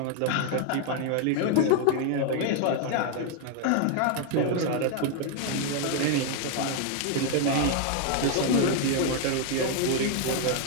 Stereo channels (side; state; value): both; different; correlation 0.00